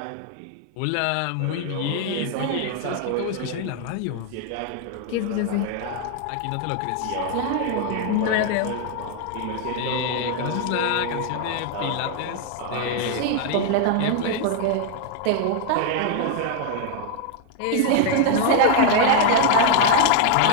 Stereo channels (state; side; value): different; both; correlation 0.00